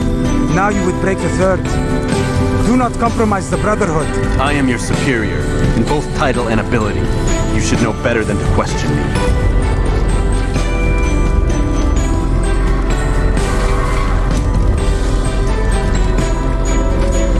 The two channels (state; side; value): identical; both; correlation 1.00